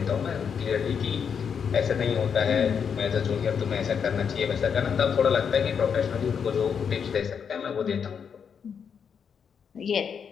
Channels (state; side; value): quieter; right; 7.0 dB